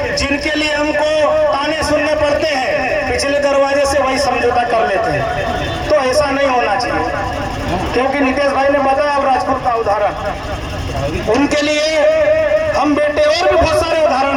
जिनके लिए हमको ताने सुनने पड़ते हैं, पिछले दरवाजे से वही समझौता कर लेते हैं। तो ऐसा नहीं होना चाहिए, क्योंकि नितेश भाई ने बताया अब राजपूत का उदाहरण, उनके लिए हम बैठे। और भी बहुत सारे उदाहरण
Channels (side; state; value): both; identical; correlation 1.00